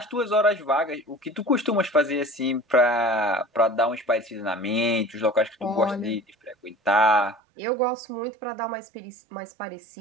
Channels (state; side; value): drops out; left; at 7.4 s